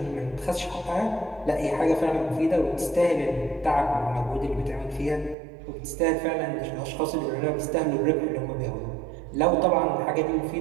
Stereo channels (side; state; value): left; drops out; at 5.4 s